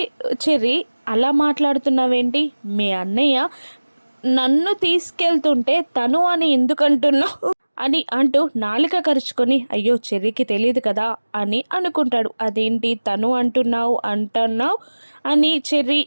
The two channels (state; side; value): inverted; both; correlation -1.00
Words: చెర్రీ అలా మాట్లాడుతున్నావేంటి, మీ అన్నయ్య నన్ను తీసుకెళ్తుంటే తను అని ఎందుకంటున్నావు అని అంటూ నాలుక కరుచుకొని, అయ్యో చెర్రీకి తెలియదు కదా అని అనుకుంటాడు. అదేంటి తను అంటున్నావు అని చెర్రీ